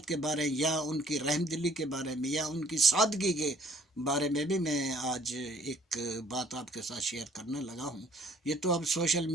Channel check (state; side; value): normal; both; correlation 0.59